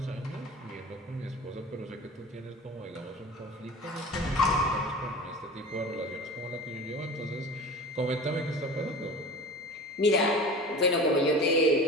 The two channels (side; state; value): both; normal; correlation 0.36